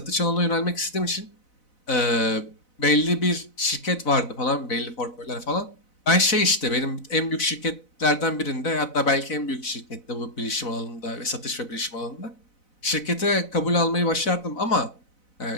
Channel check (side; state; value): right; late; 4.0 ms